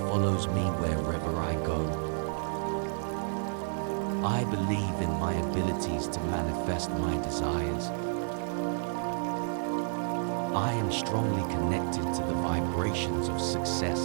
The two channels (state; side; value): silent; left; digital silence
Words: me wherever I go. I believe in my abilities to manifest my desires. I am strongly connected to the vibrations of